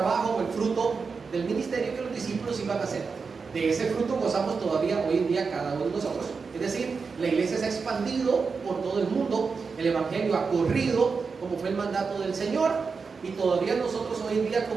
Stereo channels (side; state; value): left; quieter; 5.0 dB